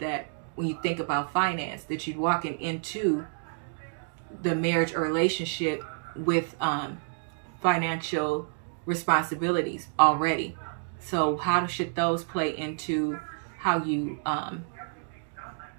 when you think about finance, that you're walking into the marriage or relationship with financial responsibilities already. So how should those play into how you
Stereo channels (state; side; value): silent; left; digital silence